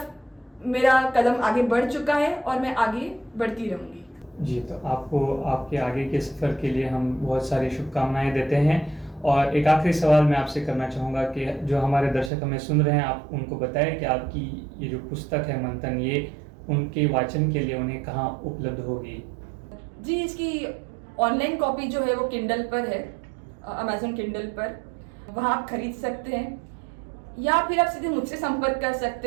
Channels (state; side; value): drops out; left; at 12.3 s